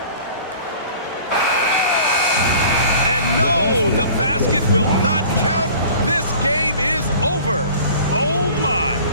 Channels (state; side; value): inverted; both; correlation -0.46